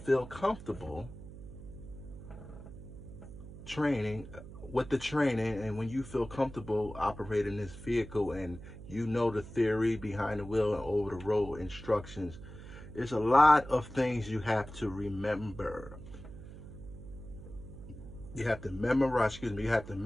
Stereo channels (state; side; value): noise; right; hum, 14 dB below the sound